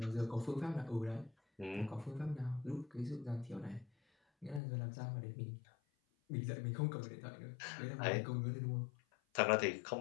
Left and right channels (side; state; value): right; drops out; at 4.6 s